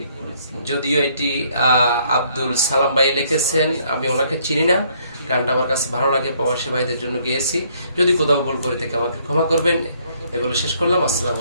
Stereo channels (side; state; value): both; inverted; correlation -0.66